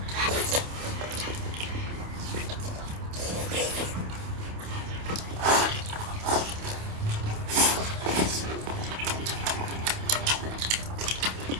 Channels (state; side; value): late; left; 28 ms